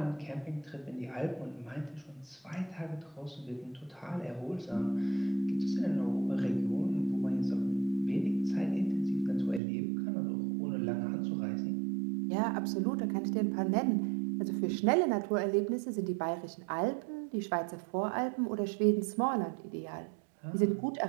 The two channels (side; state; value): left; drops out; at 9.6 s